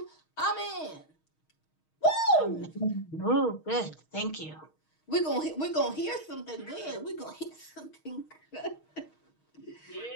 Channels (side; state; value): right; late; 6.4 ms